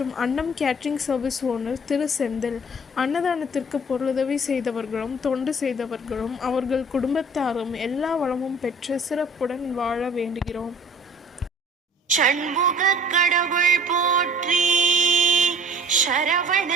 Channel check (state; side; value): normal; both; correlation 0.49